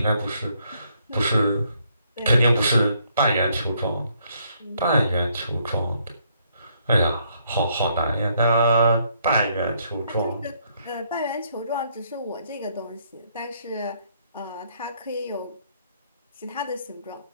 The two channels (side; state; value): both; inverted; correlation -0.71